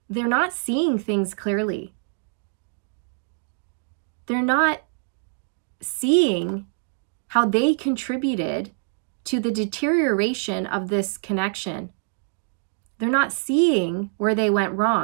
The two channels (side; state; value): left; silent; digital silence